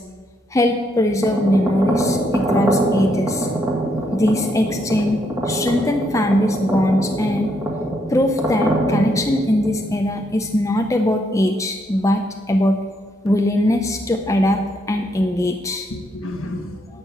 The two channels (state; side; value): normal; both; correlation 0.75